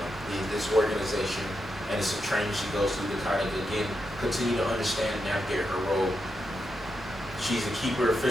this organization, and it's a training she goes through to kind of, again, continue to understand and navigate her role. She's a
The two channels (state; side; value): normal; both; correlation 0.85